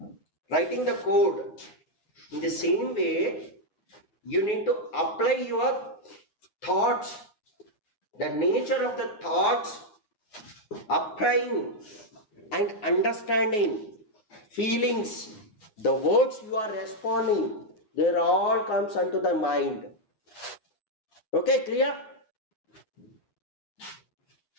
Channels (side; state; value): right; late; 9.2 ms